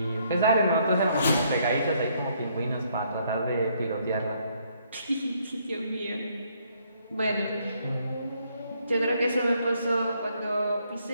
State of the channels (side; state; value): both; inverted; correlation -0.69